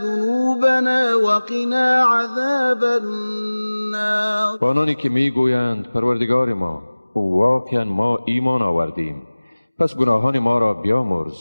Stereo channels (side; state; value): both; inverted; correlation -0.99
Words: وقنا عذاب النار. آنانی که میگویند پروردگار ما، واقعا ما ایمان آوردیم، پس گناهان ما را بیامرز